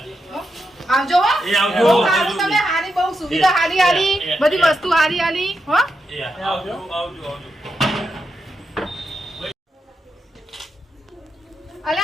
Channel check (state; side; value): normal; both; correlation 0.85